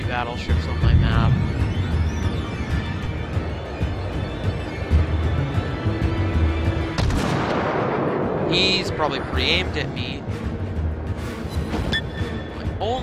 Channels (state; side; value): identical; both; correlation 1.00